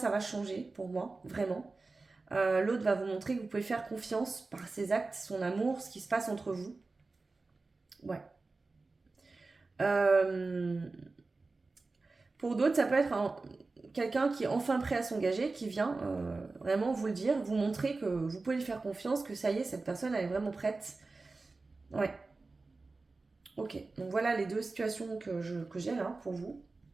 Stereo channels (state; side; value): quieter; left; 3.7 dB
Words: changer pour moi, vraiment. L'autre va vous montrer que vous pouvez faire confiance par ses actes, son amour, ce qui se passe entre vous. Ouais. Pour d'autres, ça peut être quelqu'un qui est enfin prêt à s'engager, qui vient vraiment vous le dire, vous montrer que vous pouvez lui faire confiance, que ça y est, cette personne elle est vraiment prête. Ouais. Ok, donc voilà les 2 situations que j'ai là pour vous.